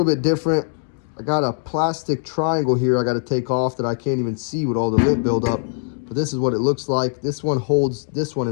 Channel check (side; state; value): right; silent; digital silence